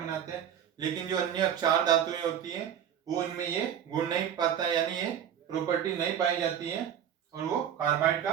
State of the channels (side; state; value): left; quieter; 9.3 dB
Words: हैं। लेकिन जो अन्य चार धातुएं होती हैं वो उनमें ये गुण नहीं पाता, यानी ये प्रॉपर्टी नहीं पाई जाती है और वो कार्बाइड का